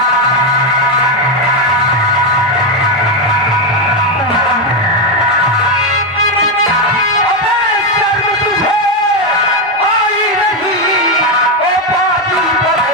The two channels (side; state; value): both; normal; correlation 0.06